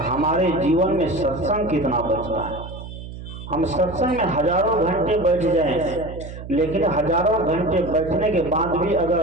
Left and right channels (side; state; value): right; noise; hum, 12 dB below the sound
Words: जीवन में सत्संग कितना बचता है। हम सत्संग में हजारों घंटे बैठ जाएं, लेकिन हजारों घंटे बैठने के बाद भी